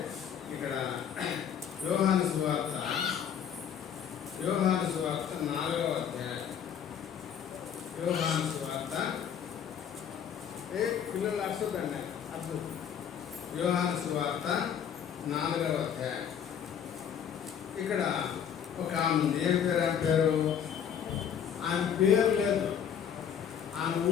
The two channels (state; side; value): quieter; right; 8.4 dB